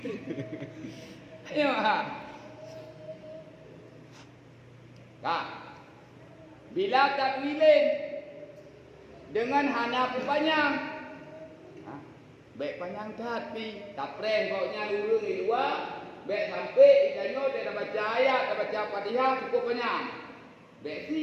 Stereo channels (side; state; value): both; identical; correlation 1.00